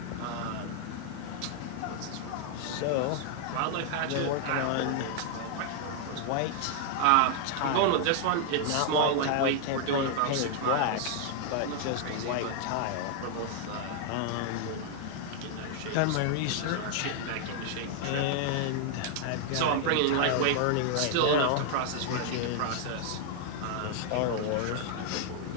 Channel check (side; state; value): both; different; correlation 0.00